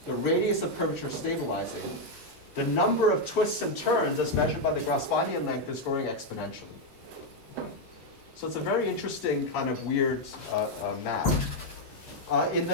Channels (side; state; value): both; normal; correlation 0.02